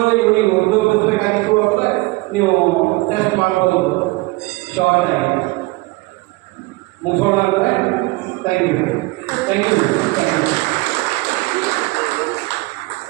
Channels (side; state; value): left; quieter; 23.0 dB